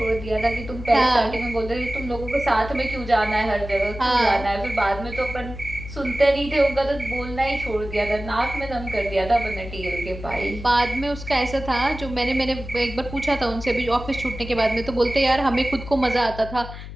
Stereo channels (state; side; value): noise; left; hum, 12 dB below the sound